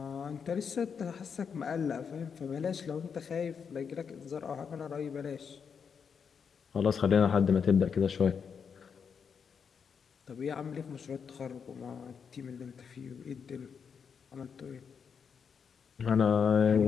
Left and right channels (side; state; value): right; quieter; 6.5 dB